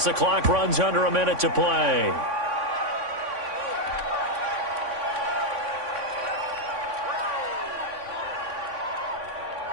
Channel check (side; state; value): left; late; 3.5 ms